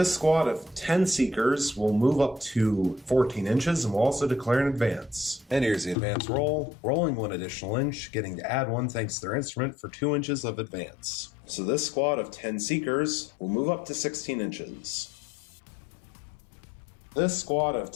squad of 10 Seekers will move up to 14 inches and will also declare an advance. And here's the advance roll, rolling 1 additional inch, getting to add 1 thanks to their instrument for 2 inches of advance. So this squad of 10 Seekers will move up to 16 inches. This squad of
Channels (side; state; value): right; drops out; at 6.0 s